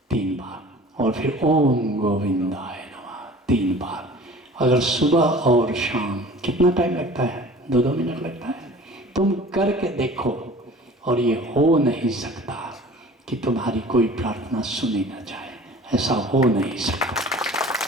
3 बार, और फिर ओम गोविंदाय नमः 3 बार। अगर सुबह और शाम, कितना टाइम लगता है? 2-2 मिनट लगता है। तुम करके देखो, और ये हो नहीं सकता कि तुम्हारी कोई प्रार्थना सुनी ना जाए, ऐसा हो नहीं सकता।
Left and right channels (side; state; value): both; normal; correlation 0.44